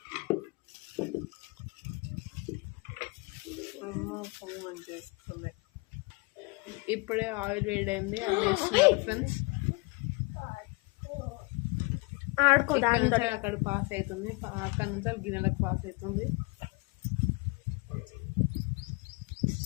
ఇప్పుడే ఆయిల్ వేడైంది, అది చేస్తున్నారు ఫ్రెండ్స్. ఇక్కడ నుంచి అక్కడ పాస్ అవుతుంది, అక్కడ నుంచి గిన్నెలకు పాస్ అవుతుంది.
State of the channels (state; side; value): quieter; right; 28.6 dB